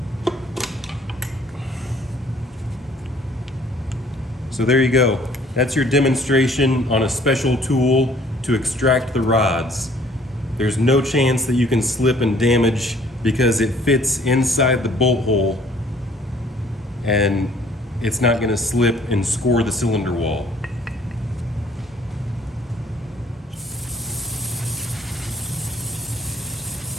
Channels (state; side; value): normal; both; correlation 0.58